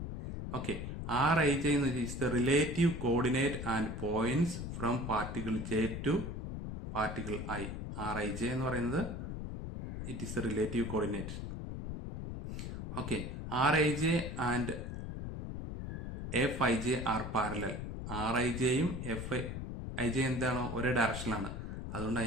Okay, R I J എന്ന് വെച്ചാൽ the relative coordinate and points from particle J to particle I. R I J എന്ന് പറയുന്നത് it is the relative coordinate. Okay, R I J and F I J are parallel. R I ജെയും F I J എന്താണോ ഒരേ ഡയറക്ഷനിലാണ്, അതുകൊണ്ട്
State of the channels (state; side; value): noise; left; rumble, 6 dB below the sound